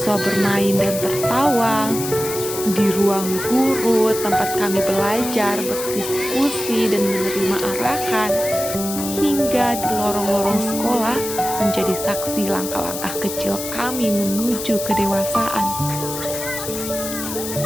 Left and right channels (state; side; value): noise; left; hiss, 7 dB below the sound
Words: bermain dan tertawa, di ruang guru tempat kami belajar, berdiskusi, dan menerima arahan, hingga di lorong-lorong sekolah menjadi saksi langkah-langkah kecil kami menuju kedewasaan.